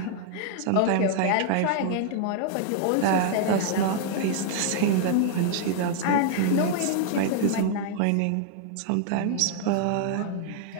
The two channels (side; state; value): both; different; correlation 0.00